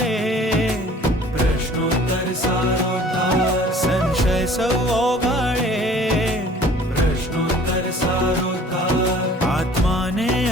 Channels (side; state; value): both; normal; correlation 0.50